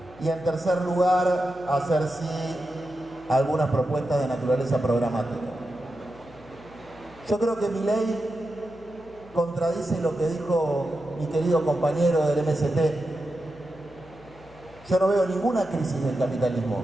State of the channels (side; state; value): left; noise; hum, 23 dB below the sound